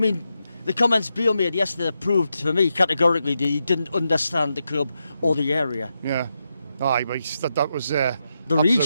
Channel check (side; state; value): both; inverted; correlation -0.86